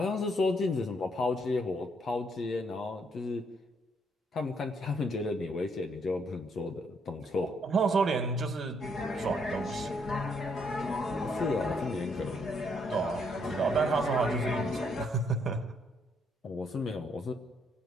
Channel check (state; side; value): normal; both; correlation 0.72